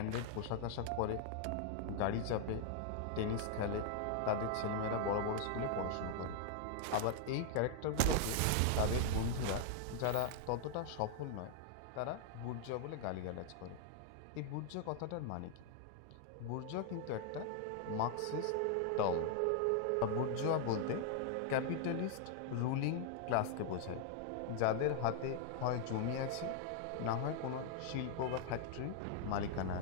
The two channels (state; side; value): different; both; correlation 0.00